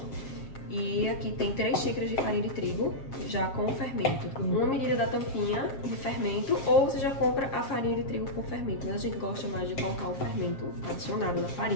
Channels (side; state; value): right; late; 7.4 ms